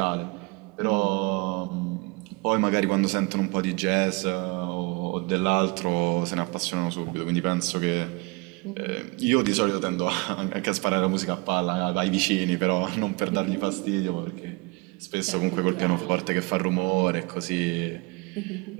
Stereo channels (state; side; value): quieter; left; 28.0 dB